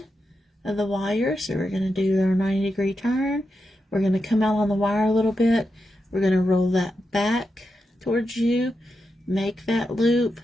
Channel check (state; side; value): normal; both; correlation 0.87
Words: of the wire. So we're going to do our 90-degree turn. We're going to come out on the wire a little bit. We're going to roll that back towards you, make that loop,